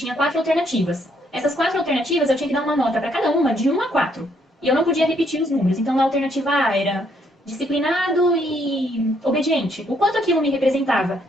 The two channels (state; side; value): normal; both; correlation 0.70